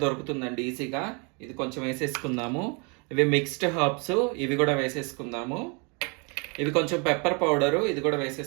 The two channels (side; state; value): left; quieter; 33.1 dB